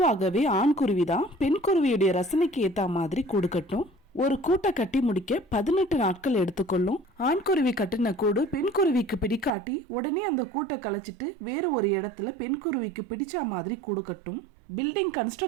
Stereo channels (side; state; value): left; drops out; at 9.5 s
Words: ஆண் குருவி தான் பெண் குருவியுடைய ரசனைக்கு ஏத்த மாதிரி கூடு கட்டும். ஒரு கூட்டை கட்டி முடிக்க 18 நாட்கள் எடுத்துக்கொள்ளும். ஆண் குருவி கட்டின கூடு பெண் குருவிக்கு பிடிக்காட்டி உடனே அந்த கூட்டை கலைச்சிட்டு வேற ஒரு இடத்துல பெண் குருவிக்கு பிடிச்ச மாதிரி கூடு கட்டும். பில்டிங்